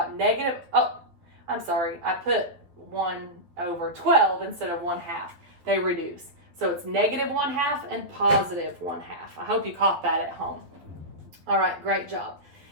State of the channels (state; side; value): late; left; 11 ms